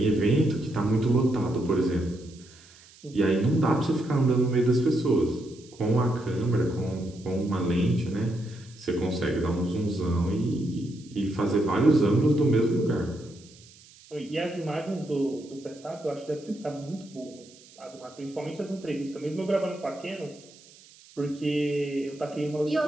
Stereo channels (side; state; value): right; noise; hiss, 24 dB below the sound